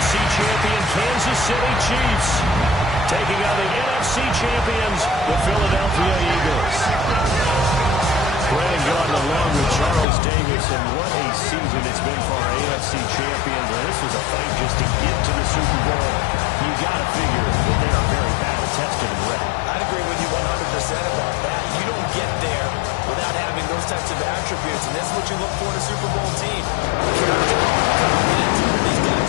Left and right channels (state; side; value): drops out; right; at 10.1 s